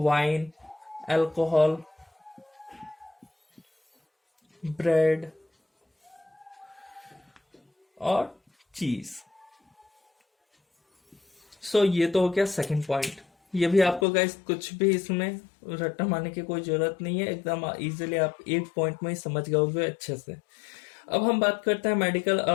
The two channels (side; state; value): right; drops out; at 14.1 s